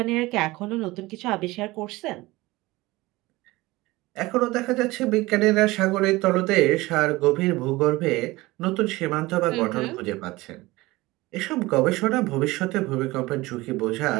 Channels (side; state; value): left; quieter; 20.3 dB